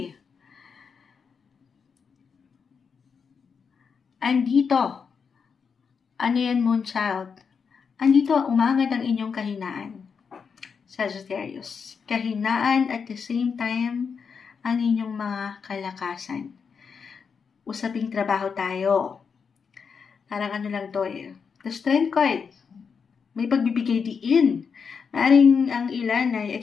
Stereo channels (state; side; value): quieter; right; 6.0 dB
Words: Andito, ano yan, Moonchild? Andito, umangad ang inyong kahinaan, Sagittarius. Kahinaan at the same time, ang inyong mga kalakasan. Usaping trabaho tayo. Parang ano lang to The Strength card, may pagbibigay diin. Maring ang ilan ay